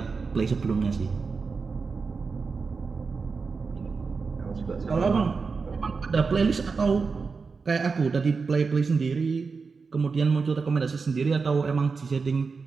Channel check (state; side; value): quieter; left; 4.8 dB